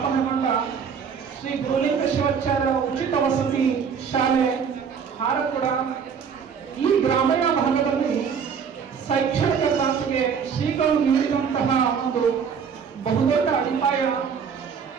ಶ್ರೀ ಗುರುಲಿಂಗ ಶಿವಾಚಾರ್ಯ ಉಚಿತ ವಸತಿ ಶಾಲೆ ಹಾರಕೂಡ ಈ ಗ್ರಾಮೀಣ ಭಾಗದಲ್ಲಿ ಶೈಕ್ಷಣಿಕ ಕ್ರಾಂತಿಗೆ ಶ್ರೀಗಳು ನೀಡಿದಂತಹ ಒಂದು ಬಹುದೊಡ್ಡ ಅಡಿಪಾಯ.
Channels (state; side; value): quieter; left; 6.7 dB